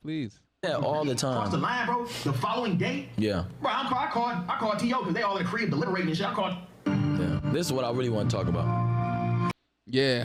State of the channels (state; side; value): identical; both; correlation 1.00